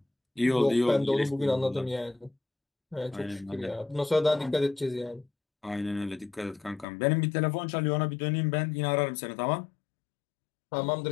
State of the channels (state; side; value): drops out; right; at 6.9 s